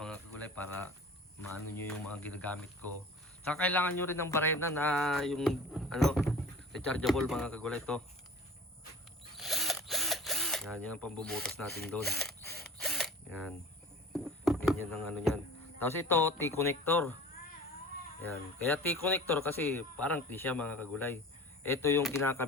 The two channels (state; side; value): normal; both; correlation 0.41